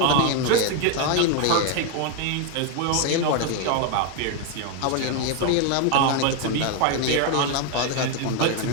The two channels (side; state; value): both; different; correlation 0.01